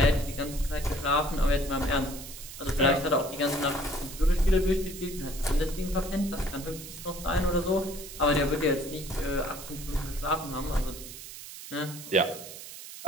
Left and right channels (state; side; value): noise; right; hiss, 13 dB below the sound